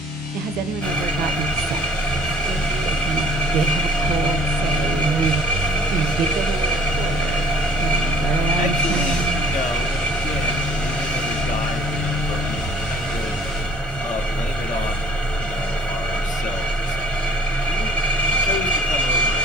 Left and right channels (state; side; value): normal; both; correlation 0.55